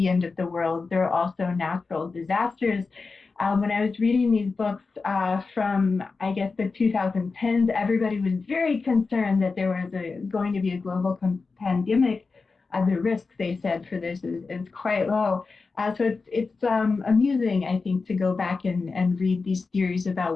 end of the world. There are also natural disasters. When I was reading these books from, I guess, the 2010s, everybody was very concerned that there was going to be a global pandemic. The risk, they said, for this is quite low. So it's amusing, I think, to go back and read these theories about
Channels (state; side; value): quieter; right; 4.3 dB